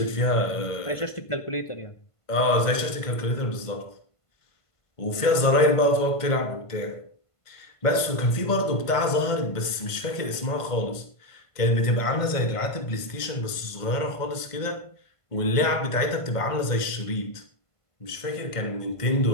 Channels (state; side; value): late; right; 1.5 ms